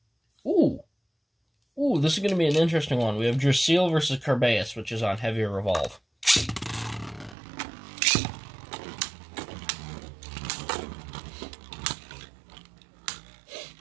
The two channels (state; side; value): drops out; left; at 7.4 s